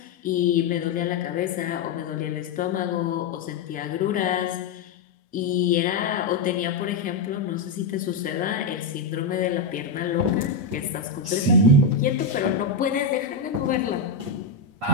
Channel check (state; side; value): quieter; right; 4.2 dB